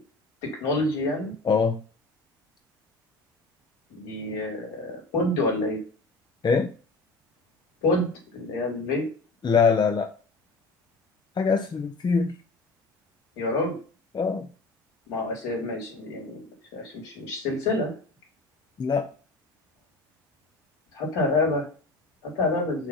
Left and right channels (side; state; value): right; quieter; 3.3 dB